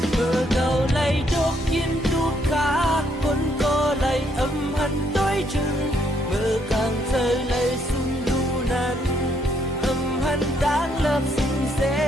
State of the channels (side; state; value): both; normal; correlation 0.71